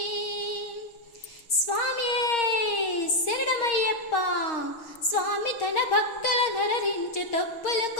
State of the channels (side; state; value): right; late; 6.4 ms